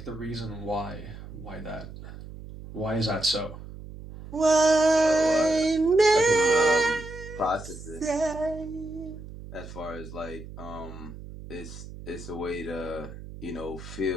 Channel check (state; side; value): noise; right; hum, 13 dB below the sound